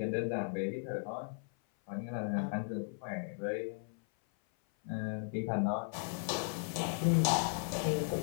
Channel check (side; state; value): right; silent; 54 dB below the other